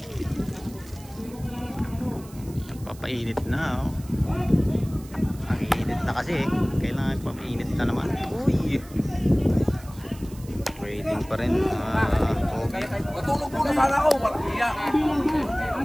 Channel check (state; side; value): noise; right; hiss, 21 dB below the sound